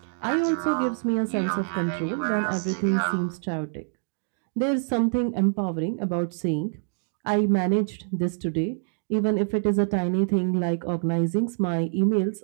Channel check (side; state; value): left; silent; digital silence